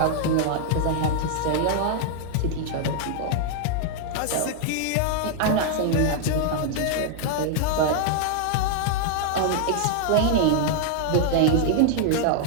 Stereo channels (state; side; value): different; both; correlation 0.00